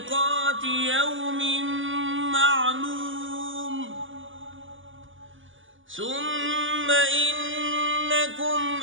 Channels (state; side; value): late; left; 0.57 ms